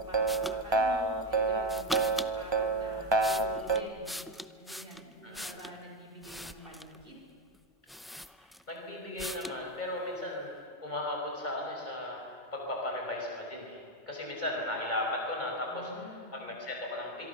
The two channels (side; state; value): both; normal; correlation 0.11